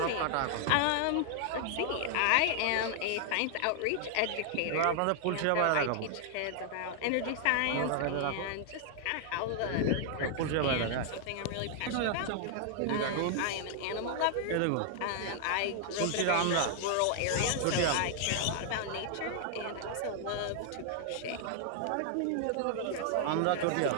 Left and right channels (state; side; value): different; both; correlation 0.00